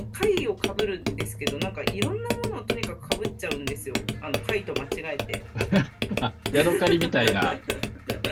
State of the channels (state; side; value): identical; both; correlation 1.00